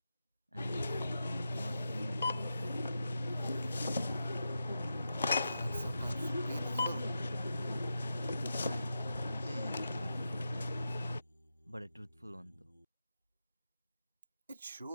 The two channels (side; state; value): both; inverted; correlation -0.89